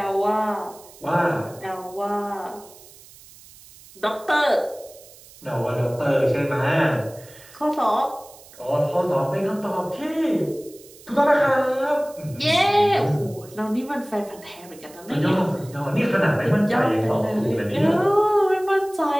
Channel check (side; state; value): right; noise; hiss, 22 dB below the sound